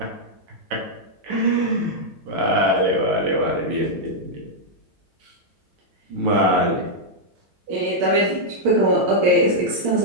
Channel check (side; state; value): left; late; 7.9 ms